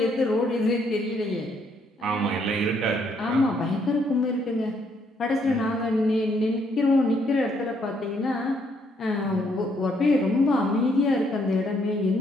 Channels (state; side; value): normal; both; correlation 0.71